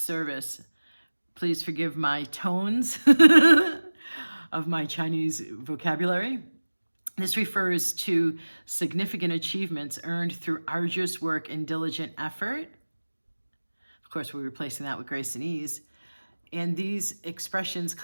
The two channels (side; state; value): both; inverted; correlation -1.00